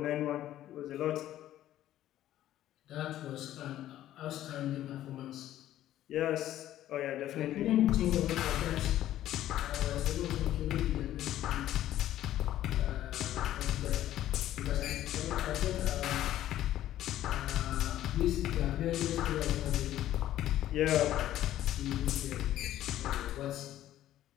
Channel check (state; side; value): quieter; right; 13.0 dB